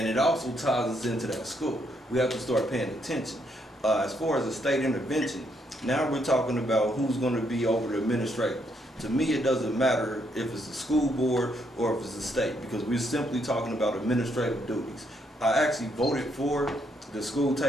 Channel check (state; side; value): normal; both; correlation 0.74